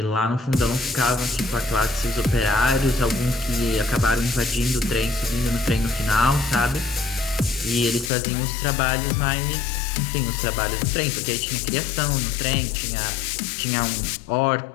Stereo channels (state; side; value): drops out; right; at 8.1 s